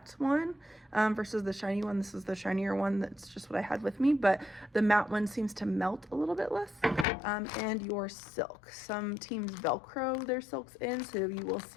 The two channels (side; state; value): right; drops out; at 7.1 s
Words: one versus the shiny one. This is the shinier one. That's just what I had with me, but the matte one seems to melt a little bit less. And your silk. Some teams Velcro their silks in, so you will